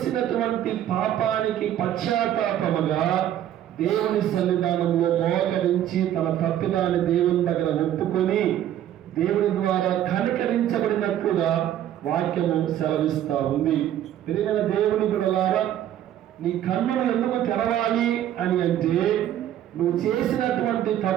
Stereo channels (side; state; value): left; quieter; 11.5 dB